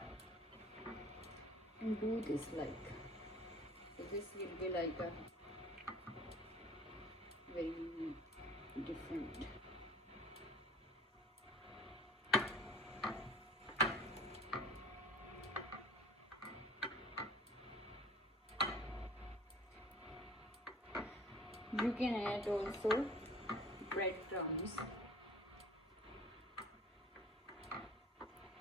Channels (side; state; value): both; normal; correlation 0.48